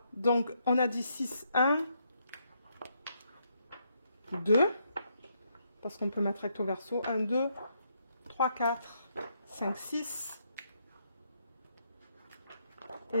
Donc on a dit 6, 1, 2, parce qu'on peut mettre recto verso, 1, 2, 3, 4, 5, 6.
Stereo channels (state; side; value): inverted; both; correlation -0.76